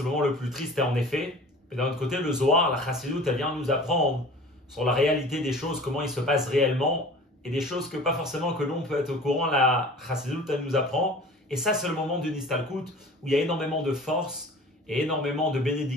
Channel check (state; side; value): normal; both; correlation 0.42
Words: le moment le plus triste et en effet. Mais d'un autre côté, le Zohar, la Chassidut, elle vient nous apprendre sur la réalité des choses, comment il se passe réellement, et des choses que pas forcément que l'on peut être au courant, la Chassidut, elle nous apprend. Et ça, c'est le moment d'une Istalkut où il y a énormément de force et énormément de